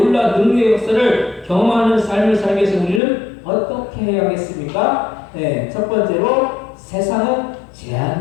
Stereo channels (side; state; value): right; drops out; at 3.0 s